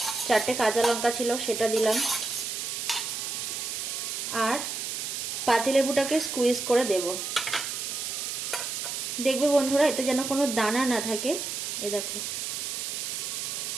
4টে কাঁচা লঙ্কা ছিল সেটা দিলাম। আর পাতিলেবুটাকে স্কুইজ করে দেব। দেখবে বন্ধুরা, এতে যেন কোনো দানা না থাকে। এই দেখো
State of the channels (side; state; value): right; noise; hiss, 4 dB below the sound